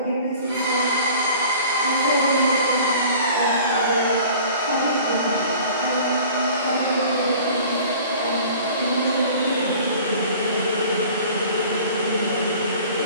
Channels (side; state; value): both; inverted; correlation -0.46